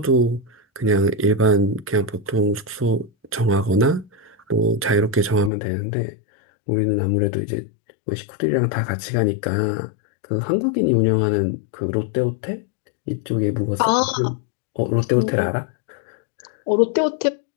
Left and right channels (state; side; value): drops out; right; at 5.5 s